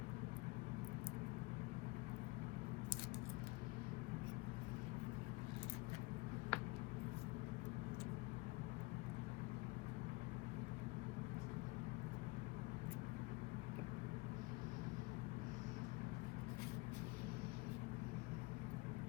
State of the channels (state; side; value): quieter; right; 24.3 dB